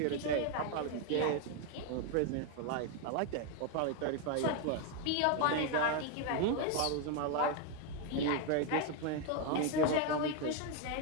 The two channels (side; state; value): both; different; correlation 0.01